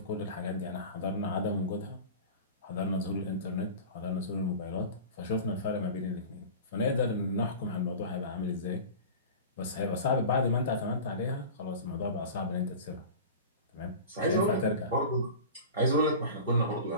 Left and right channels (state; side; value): inverted; both; correlation -0.34